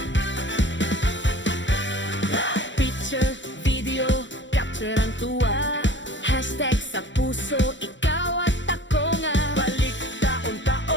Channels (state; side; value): late; right; 0.54 ms